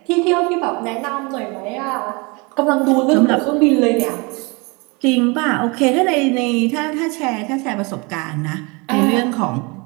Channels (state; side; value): quieter; left; 28.4 dB